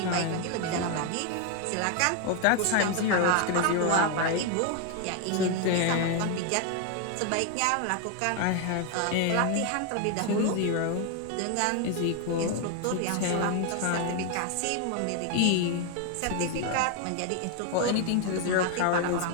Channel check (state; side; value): different; both; correlation 0.01